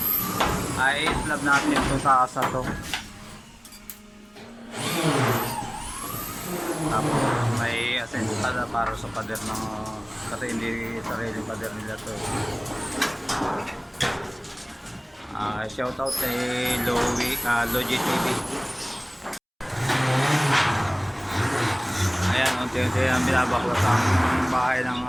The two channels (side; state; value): both; identical; correlation 1.00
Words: Ay slab natin ito sa asa to. Tapos may asensada para sa pader ng kasi hindi sarili pader nila to. Shout out kay Logi TV. Ayan, unti-unti ang binabaklas ang bahay ng